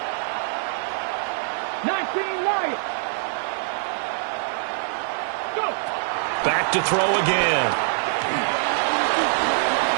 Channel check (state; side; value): silent; left; 59 dB below the other